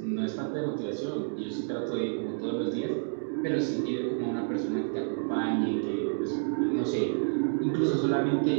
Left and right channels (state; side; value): silent; left; digital silence